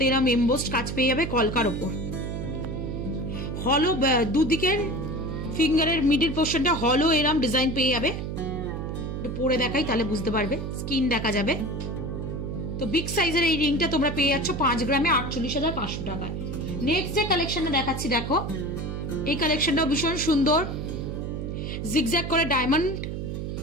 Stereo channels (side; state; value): right; noise; hum, 4 dB below the sound